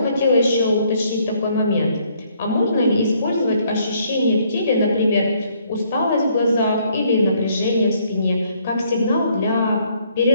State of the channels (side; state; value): both; inverted; correlation -0.67